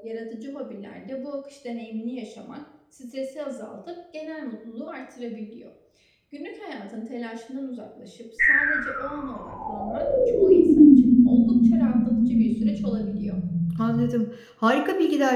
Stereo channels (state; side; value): identical; both; correlation 1.00